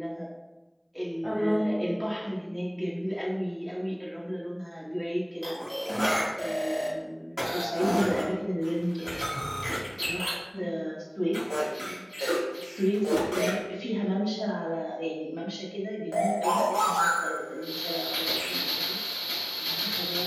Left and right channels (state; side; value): identical; both; correlation 1.00